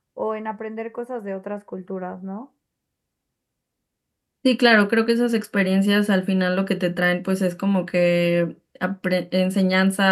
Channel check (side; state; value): both; identical; correlation 1.00